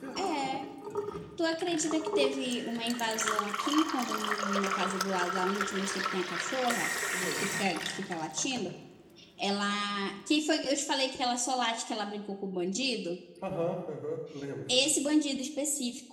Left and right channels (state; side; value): identical; both; correlation 1.00